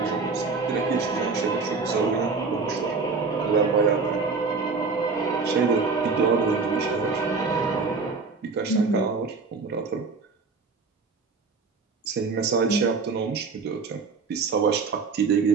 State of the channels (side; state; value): left; quieter; 4.5 dB